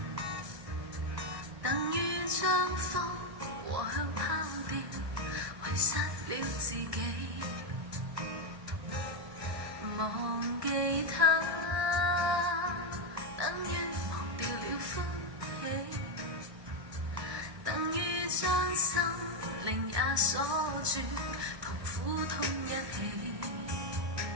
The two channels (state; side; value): late; left; 1.2 ms